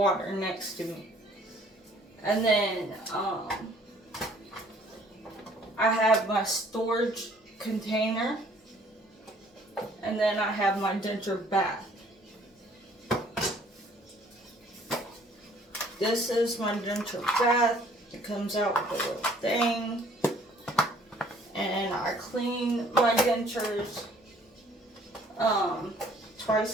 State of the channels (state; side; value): normal; both; correlation 0.58